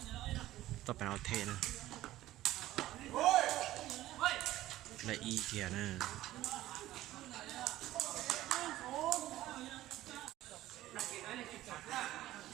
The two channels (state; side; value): quieter; left; 15.1 dB